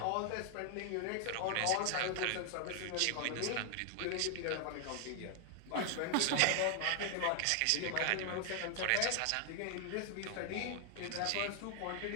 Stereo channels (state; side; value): different; both; correlation 0.00